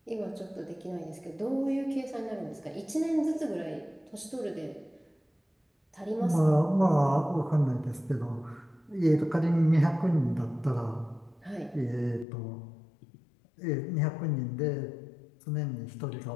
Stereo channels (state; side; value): drops out; right; at 12.2 s